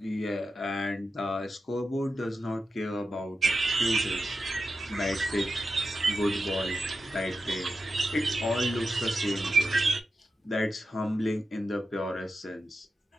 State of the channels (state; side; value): normal; both; correlation 0.90